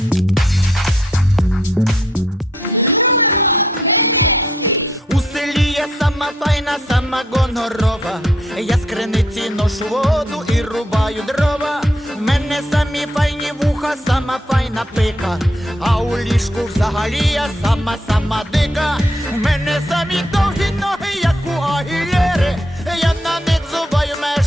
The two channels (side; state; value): both; normal; correlation 0.73